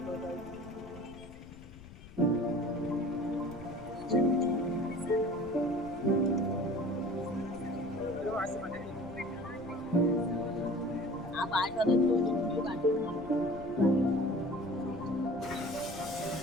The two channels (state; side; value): noise; left; rumble, 17 dB below the sound